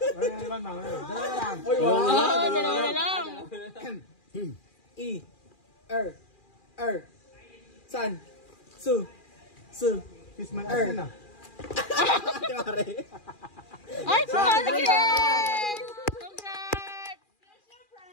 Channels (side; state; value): right; late; 2.4 ms